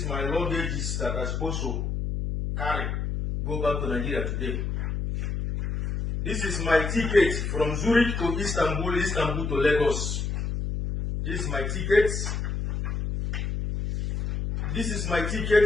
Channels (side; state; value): left; noise; hum, 2 dB below the sound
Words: is my luggage that I'm supposed to carry, go back to Nigeria today. This is my ticket from Zurich to Istanbul, Istanbul to Lagos. This is my ticket. This is my